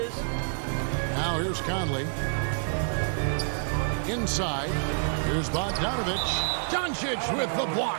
Now here's Conley. Inside. Here's Bogdanovich. Doncic with the block.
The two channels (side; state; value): left; silent; digital silence